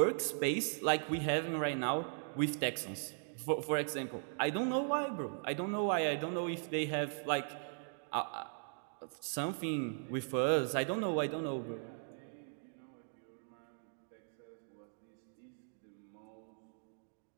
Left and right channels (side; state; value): left; silent; digital silence